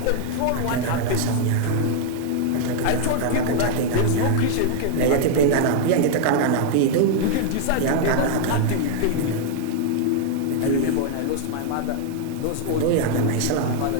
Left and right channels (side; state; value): both; different; correlation 0.00